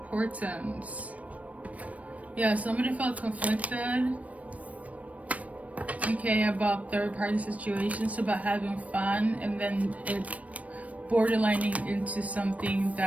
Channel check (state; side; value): late; left; 0.067 ms